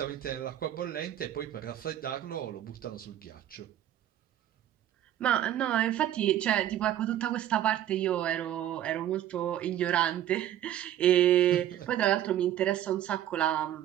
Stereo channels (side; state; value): left; quieter; 11.9 dB